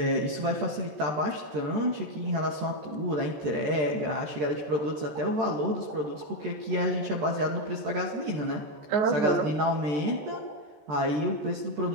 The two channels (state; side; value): late; left; 13 ms